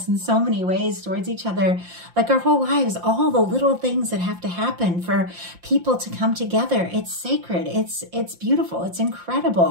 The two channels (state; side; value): late; left; 5.7 ms